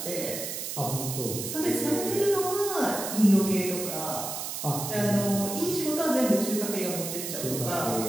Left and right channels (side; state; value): right; noise; hiss, 5 dB below the sound